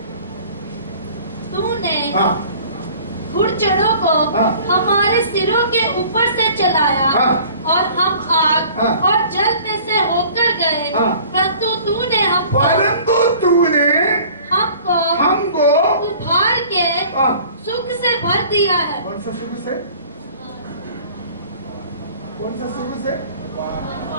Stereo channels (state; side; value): inverted; both; correlation -0.49